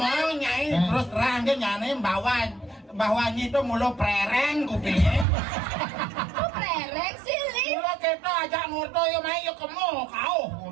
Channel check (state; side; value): drops out; left; at 5.2 s